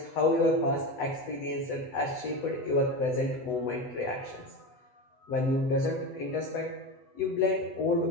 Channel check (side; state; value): right; late; 8.0 ms